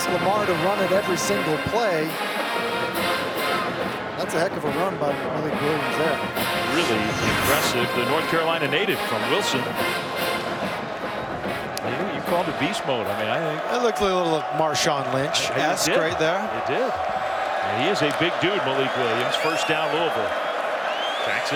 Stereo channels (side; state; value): both; identical; correlation 1.00